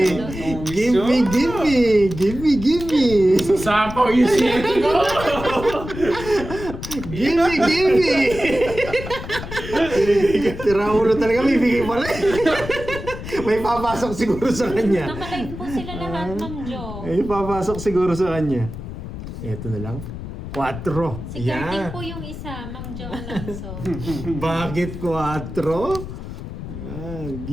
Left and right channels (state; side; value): noise; left; rumble, 9 dB below the sound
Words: Sasapaw yung shit ko. Gimme, gimme! Tira ulo talaga, may bigay pala. May papasok siguro sa kanya. Nakalive po sila lahat, Ma'am Jo. May papasok siguro sa kanya. Ito na lang. 4. Si Carding po yung isa, Ma'am Jo Alonso. Bakit 4?